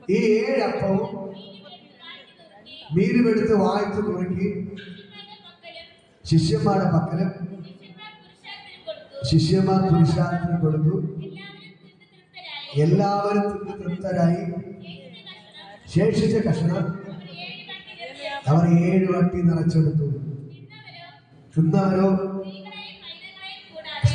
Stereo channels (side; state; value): both; identical; correlation 1.00